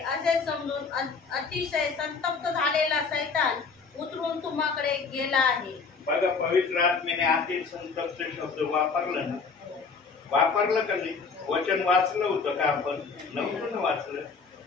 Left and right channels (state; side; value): quieter; right; 4.9 dB